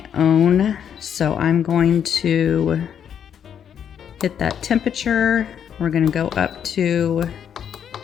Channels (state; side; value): quieter; right; 8.5 dB